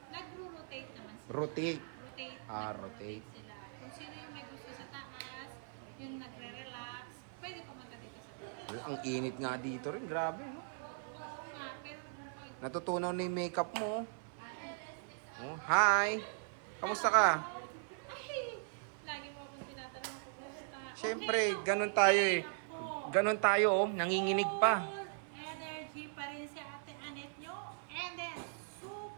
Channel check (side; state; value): left; silent; 52 dB below the other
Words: Nagro-rotate naman sila. Rotate. Rotate. Rotate. Sila. Kung sino yung may gusto sa taas, yung nagre-relax, pwede pumunta dito sa taas. Ang init nga dito rin. Grabe. No? Oo nga, pero Natutunaw na yung makeup mo. Oh, hi! Kamusta ka? ay, lagi mo akong tinatanong kung kumusta. Siyempre, Okay, ganun tayo eh. Ganun tayo oh, nanginginig pa. Energy pa rin si Ate Annette nyo. And then,